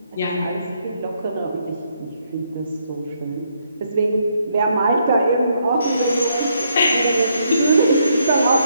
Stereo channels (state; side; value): inverted; both; correlation -0.74